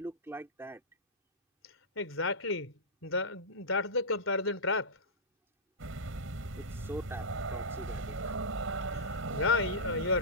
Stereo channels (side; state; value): both; normal; correlation -0.15